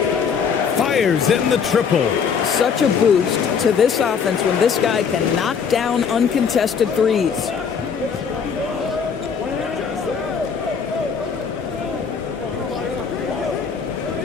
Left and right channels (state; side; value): quieter; right; 6.5 dB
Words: Fires in the triple. Such a boost to this offense when this guy can knock down uncontested threes.